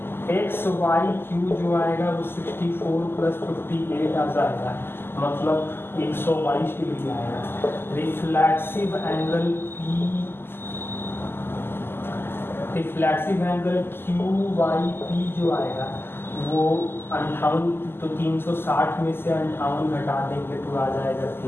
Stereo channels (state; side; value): late; right; 0.11 ms